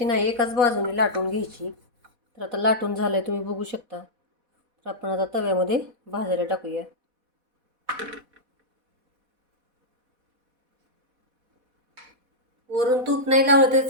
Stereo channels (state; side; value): late; left; 4.1 ms